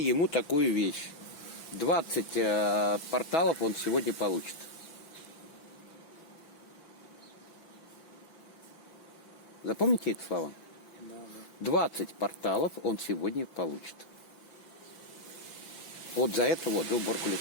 такую вещь. 20 порталов он сегодня получит. Запомните эти слова? Да, да. 20 порталов он сегодня получит. Вот за это вот, за уборку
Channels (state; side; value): late; right; 5.7 ms